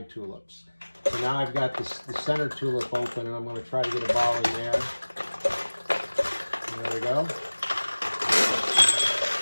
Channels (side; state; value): both; inverted; correlation -1.00